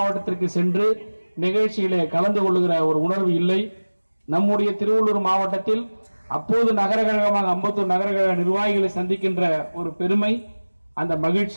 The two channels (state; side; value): inverted; both; correlation -1.00